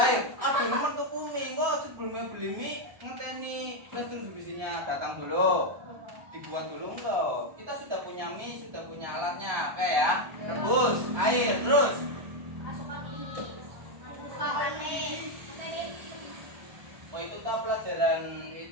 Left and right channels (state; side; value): late; left; 1.1 ms